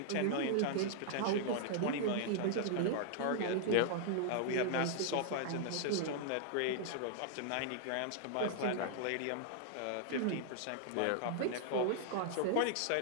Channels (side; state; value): both; different; correlation -0.01